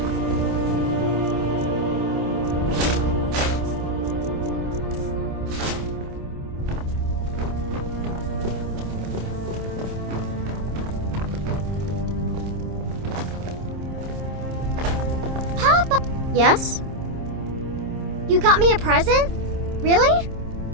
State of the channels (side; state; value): left; late; 26 ms